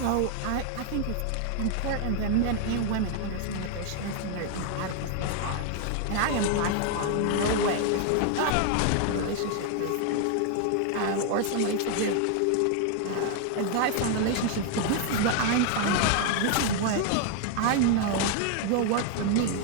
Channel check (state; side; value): different; both; correlation 0.00